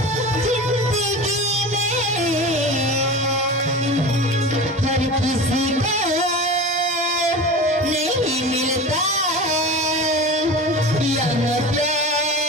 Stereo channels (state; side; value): normal; both; correlation 0.31